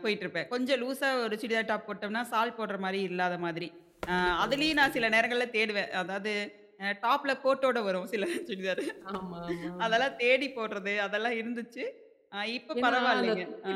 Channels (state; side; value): identical; both; correlation 1.00